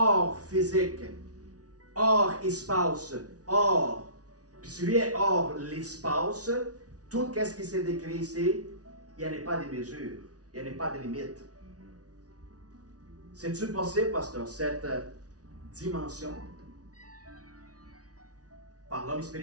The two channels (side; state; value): left; late; 0.68 ms